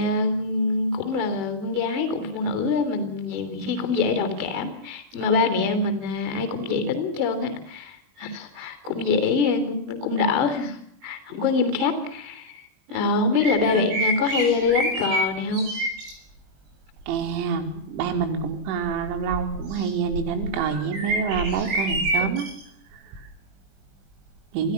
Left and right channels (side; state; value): left; late; 21 ms